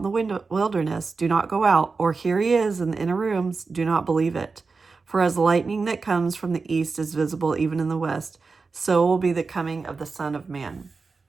the wilderness, do not go out, or here he is in the inner rooms, do not believe it. For as lightning that comes from the east is visible even in the west, so will be the coming of the Son of Man.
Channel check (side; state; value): left; quieter; 4.4 dB